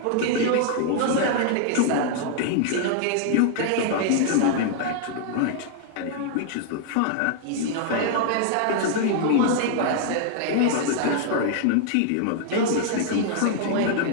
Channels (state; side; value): different; both; correlation 0.00